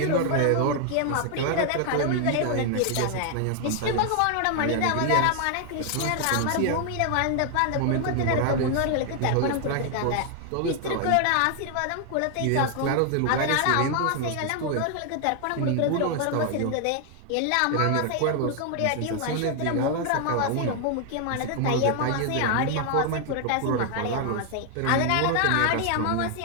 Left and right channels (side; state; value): both; different; correlation 0.00